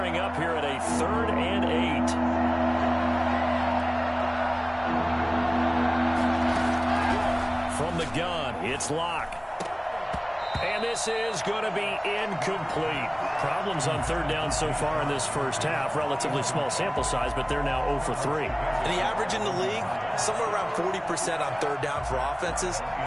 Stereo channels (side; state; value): both; identical; correlation 1.00